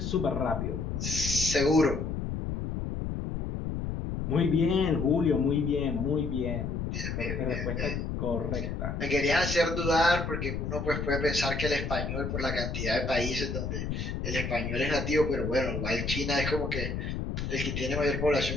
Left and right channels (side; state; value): left; noise; rumble, 3 dB below the sound